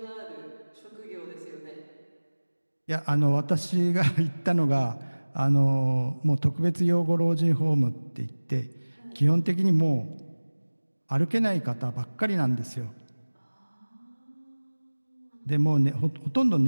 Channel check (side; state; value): both; inverted; correlation -1.00